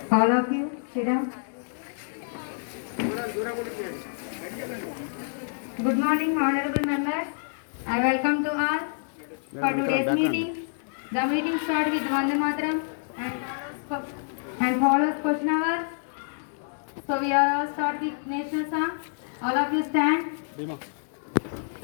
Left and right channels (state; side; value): silent; right; digital silence